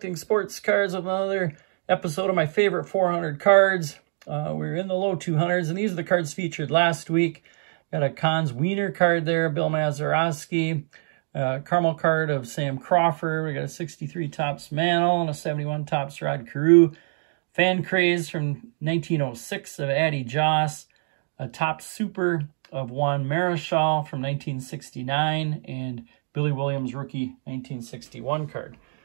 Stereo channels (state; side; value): silent; left; digital silence